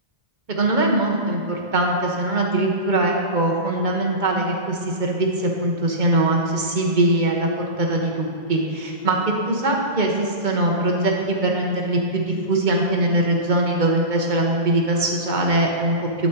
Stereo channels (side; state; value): left; late; 2.2 ms